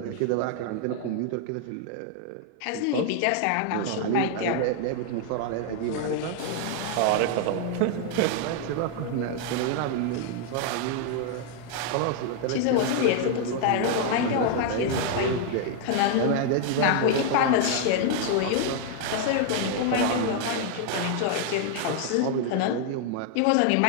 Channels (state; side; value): different; both; correlation 0.00